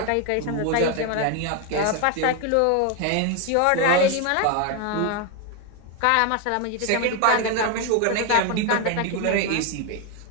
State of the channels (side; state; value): both; different; correlation 0.01